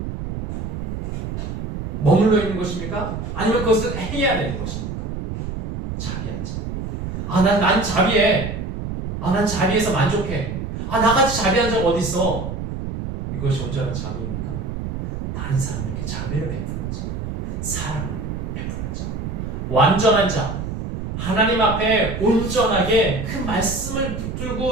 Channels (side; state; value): right; noise; rumble, 4 dB below the sound